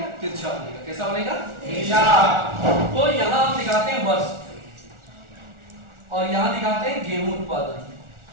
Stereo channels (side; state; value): left; late; 1.4 ms